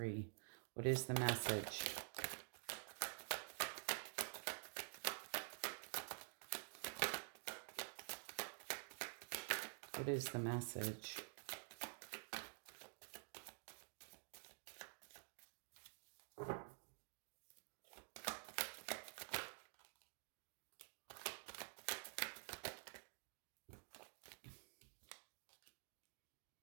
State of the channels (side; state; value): left; silent; digital silence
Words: What is the message? What is the message?